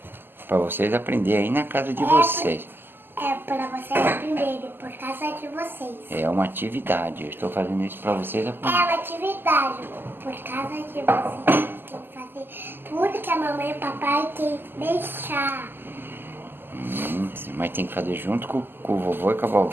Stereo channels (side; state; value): left; late; 0.097 ms